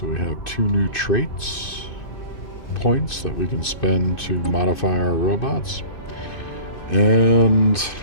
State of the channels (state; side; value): late; right; 2.6 ms